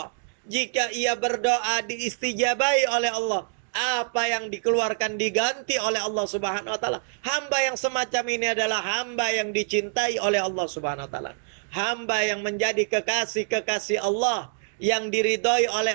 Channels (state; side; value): silent; left; 61 dB below the other